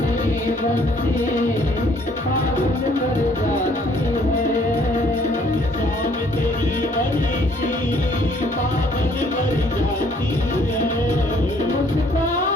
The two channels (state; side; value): normal; both; correlation 0.62